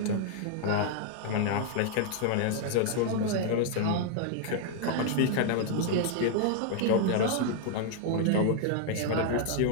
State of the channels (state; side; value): different; both; correlation 0.00